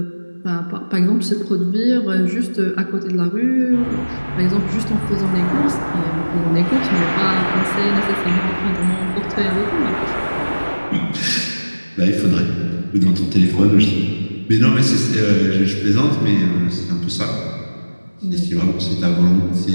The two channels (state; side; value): inverted; both; correlation -1.00